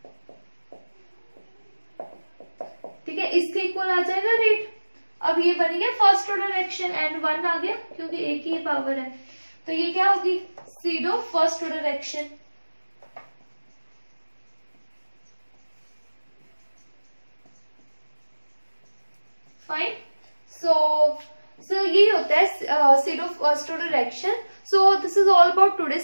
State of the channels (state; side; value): inverted; both; correlation -1.00